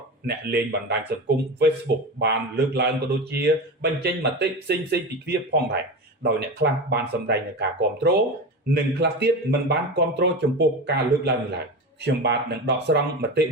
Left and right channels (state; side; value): normal; both; correlation 0.25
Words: អ្នកលេងបណ្ដាញសង្គម Facebook បានលើកឡើងក៏ដូចជាបញ្ចេញមតិផ្សេងៗពីគ្នាផងដែរដោយអ្នកខ្លះបានសម្ដែងនូវការគាំទ្រនិងខ្លះទៀតមិនបានគាំទ្រចំពោះការលើកឡើងនេះឡើយខ្ញុំបាទនឹងដកស្រង់មតិ